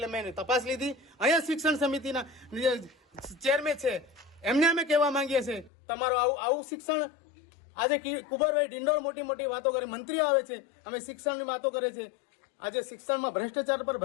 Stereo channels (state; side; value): drops out; right; at 5.7 s